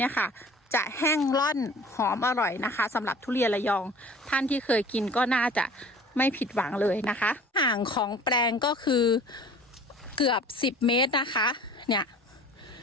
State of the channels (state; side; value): normal; both; correlation 0.46